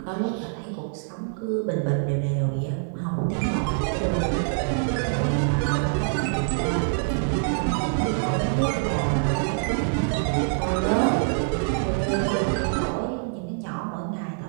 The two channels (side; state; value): left; silent; digital silence